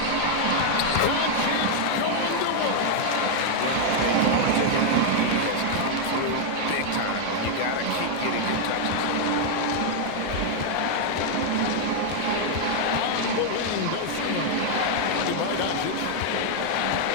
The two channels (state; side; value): different; both; correlation 0.00